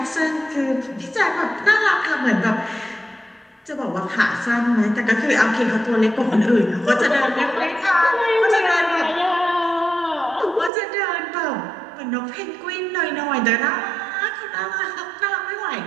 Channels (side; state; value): left; drops out; at 10.7 s